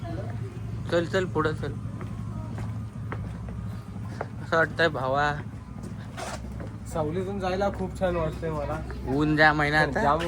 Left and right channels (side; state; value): both; identical; correlation 1.00